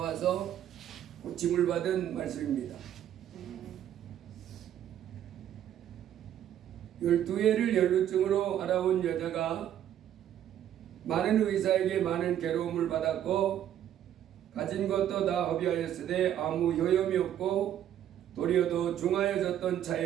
고침을 받은 말씀입니다. 12회를 혈루증으로 알아온 여자가 많은 의사에게 많은 괴로움을 받았고 가진 것도 다 허비하였으되 아무 효염이 없고 도리어 더 중하여졌던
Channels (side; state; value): left; quieter; 10.8 dB